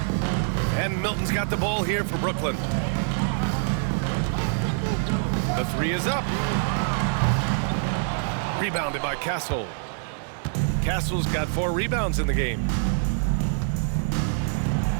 And Milton's got the ball here for Brooklyn. The 3 is up. Rebounded by Castle. Castle's got 4 rebounds in the game.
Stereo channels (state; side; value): silent; left; 62 dB below the other